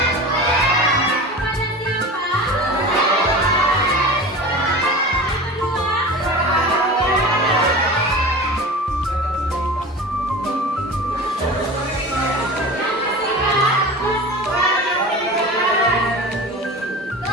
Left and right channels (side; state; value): both; normal; correlation 0.33